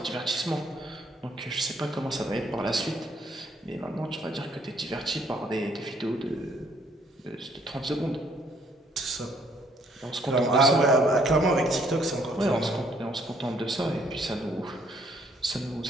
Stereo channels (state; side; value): normal; both; correlation 0.65